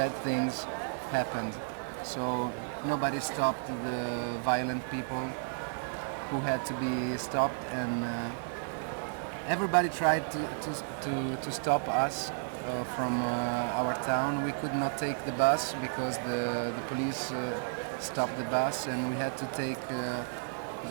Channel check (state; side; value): silent; left; digital silence